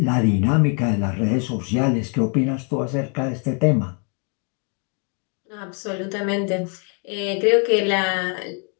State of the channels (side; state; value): right; quieter; 38.9 dB